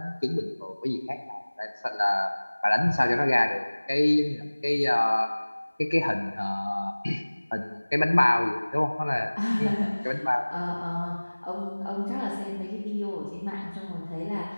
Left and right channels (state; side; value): inverted; both; correlation -1.00